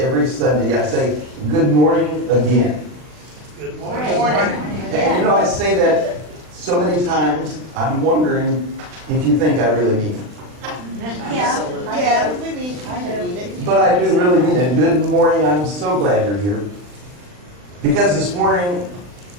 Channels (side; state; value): left; late; 39 ms